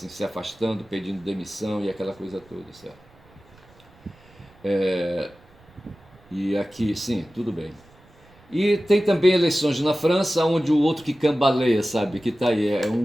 se afastando, pedindo demissão e aquela coisa toda, certo? E aqui, sim, tudo bem. E tem também eleições na França, onde o outro que cambaleia, sabe, que tá aí, é um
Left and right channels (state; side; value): noise; right; rumble, 28 dB below the sound